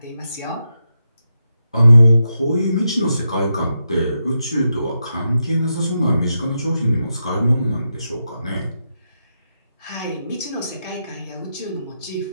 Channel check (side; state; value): both; inverted; correlation -0.86